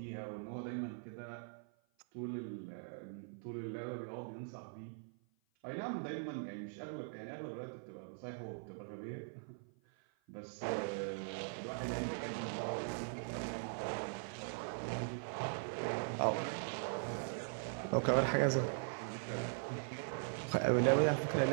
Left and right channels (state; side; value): silent; left; 50 dB below the other